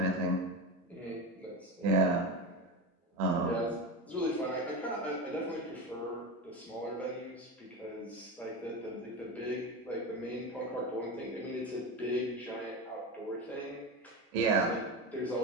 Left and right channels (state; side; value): normal; both; correlation 0.22